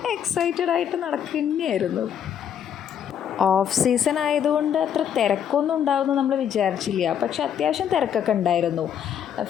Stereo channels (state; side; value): quieter; right; 9.0 dB